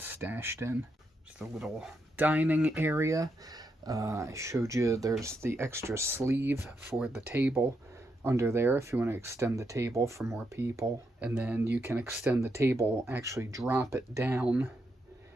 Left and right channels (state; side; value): normal; both; correlation 0.81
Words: stashed in. Just a little dining area. I showed you there's the extra sleeve for the table under there if you want to extend the table for more people. And then you can extend the table, actually drop it down,